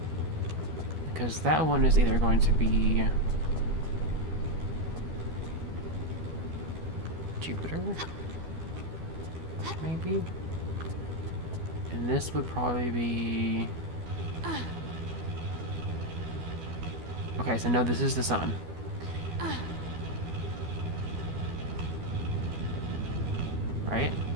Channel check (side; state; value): left; late; 12 ms